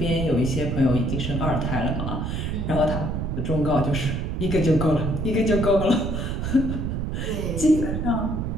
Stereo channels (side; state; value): right; noise; rumble, 2 dB below the sound